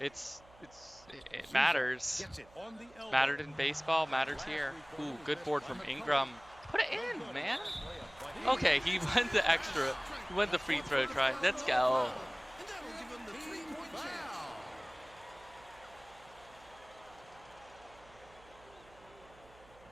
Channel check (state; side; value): noise; right; hum, 25 dB below the sound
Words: It matters. Gets it on the elbow. Mattered in baseball, matters here. Ooh, good board from Ingram. Put it in, man. Okay, he went the extra. He went the free throw try. Let's go. And that'll give him the 3-point chance.